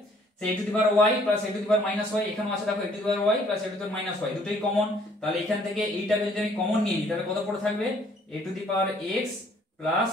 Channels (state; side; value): normal; both; correlation 0.61